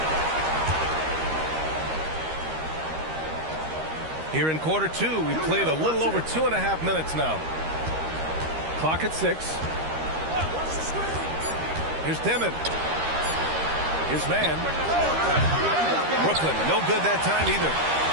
Here in quarter 2, we played a little over 2.5 minutes now. Clock at 6. Here's Demon. His man. Brooklyn, no good that time either.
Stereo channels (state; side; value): late; left; 13 ms